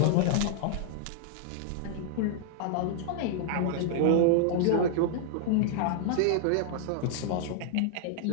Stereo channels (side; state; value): both; different; correlation -0.01